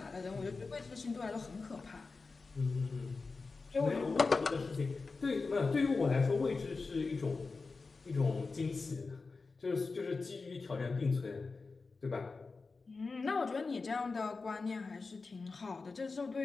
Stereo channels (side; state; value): right; quieter; 4.1 dB